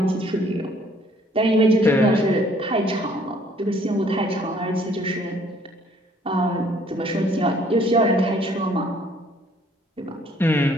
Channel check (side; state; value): both; normal; correlation 0.60